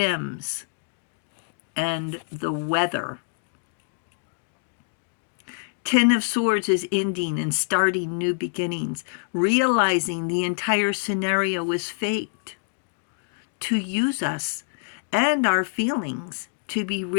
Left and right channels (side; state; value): right; silent; digital silence